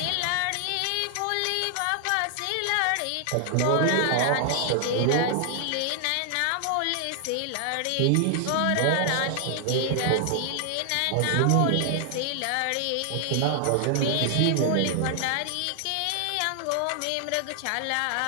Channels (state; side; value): different; both; correlation 0.00